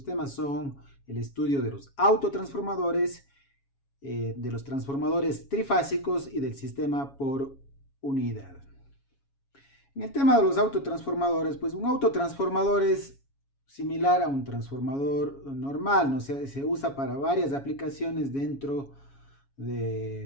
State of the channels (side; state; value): right; late; 7.2 ms